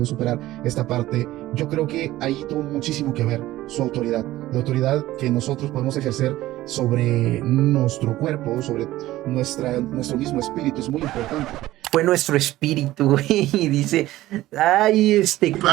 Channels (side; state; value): left; quieter; 16.0 dB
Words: superar esta parte. Yo creo que ahí tuvo muchísimo que ver su autoridad. La autoridad que nosotros podemos ejercer sobre nuestro cuerpo, sobre nuestro mismo espíritu, es muy importante. Fue nuestro espíritu, güey. Y dice, ay,